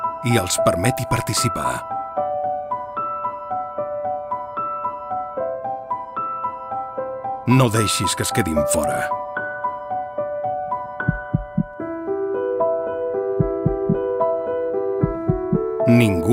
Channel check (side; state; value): both; identical; correlation 1.00